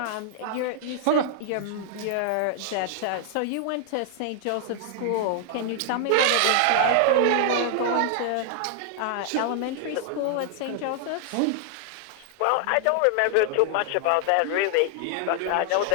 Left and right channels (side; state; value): both; different; correlation 0.00